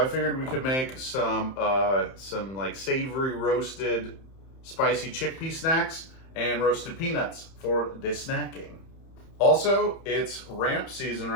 I figured we could make some like savory roasted spicy chickpea snacks and roasted peanuts for the snacking. Also, it's ramp season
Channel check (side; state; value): right; late; 31 ms